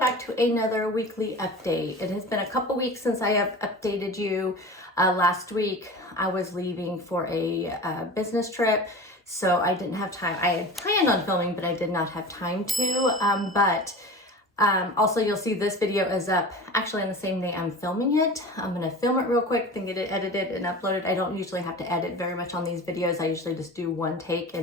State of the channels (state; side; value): normal; both; correlation 0.34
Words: to another weekly update. It has been a couple weeks since I have updated you. Last week I was leaving for a business trip, so I didn't have time. I had planned on filming, but I did not have time to. Also you'll see this video is up actually on the same day I'm filming it. I'm gonna film it real quick, then get it edited and uploaded. I don't usually have to edit very much on these videos. I usually just do one take